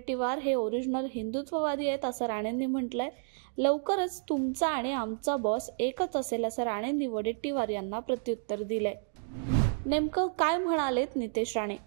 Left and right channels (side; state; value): left; silent; digital silence